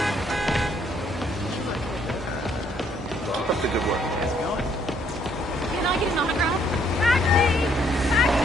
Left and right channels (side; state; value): both; normal; correlation 0.67